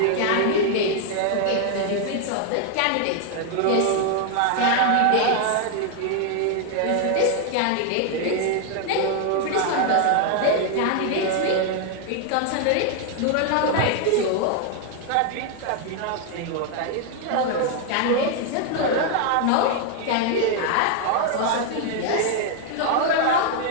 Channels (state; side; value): different; both; correlation 0.00